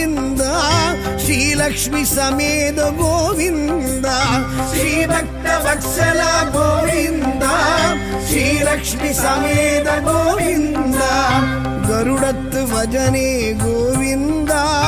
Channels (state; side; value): identical; both; correlation 1.00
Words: శ్రీల ಶ್ರೀಲಕ್ಷ್ಮಿ ಸಮೇತ ಗೋವಿಂದ ಶ್ರೀಭಕ್ತ ವತ್ಸಲ ಗೋವಿಂದ ಶ್ರೀಲಕ್ಷ್ಮಿ ಸಮೇತ ಗೋವಿಂದ ಗರುಡತ್ತು ಭಜನೆ ಗೋವಿಂದ